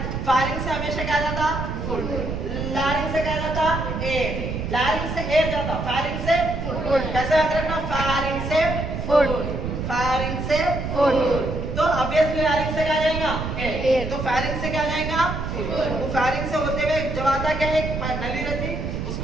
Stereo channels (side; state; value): right; noise; rumble, 4 dB below the sound